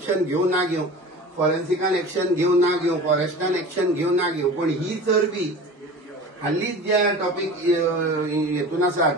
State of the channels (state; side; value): normal; both; correlation 0.36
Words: घेवं ना घेवं, फॉरेन्सिकान एक्शन घेवं ना घेवं, फॉरेस्टान एक्शन घेवं ना घेवं, पण ही चरबी हालींच ज्या टॉपिक हेतून आसात